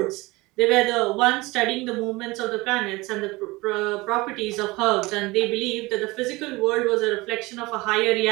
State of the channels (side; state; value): left; quieter; 22.1 dB